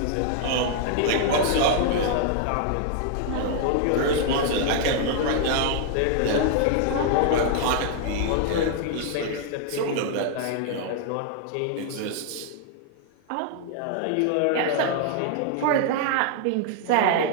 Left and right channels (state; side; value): different; both; correlation 0.00